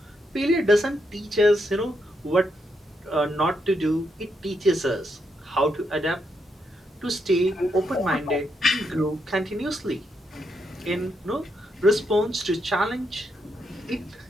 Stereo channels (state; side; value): normal; both; correlation 0.80